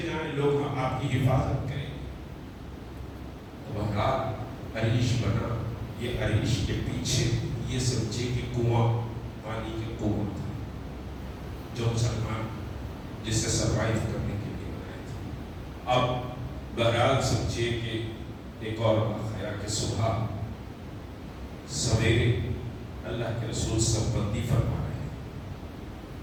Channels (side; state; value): both; identical; correlation 1.00